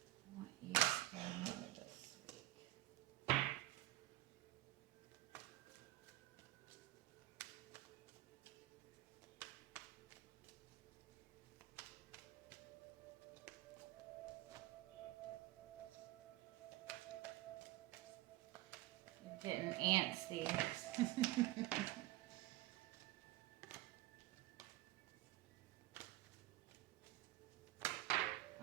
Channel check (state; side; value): quieter; left; 17.0 dB